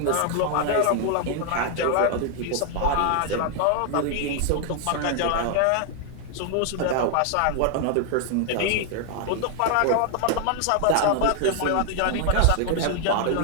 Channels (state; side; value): different; both; correlation 0.00